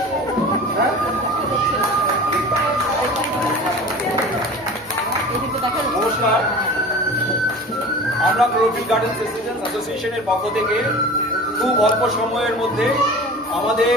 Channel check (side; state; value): both; normal; correlation 0.37